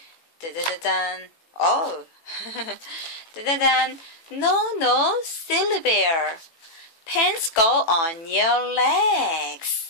Da da da da. Oh, da da da. No, silly bear. Pants go on your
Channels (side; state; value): right; late; 18 ms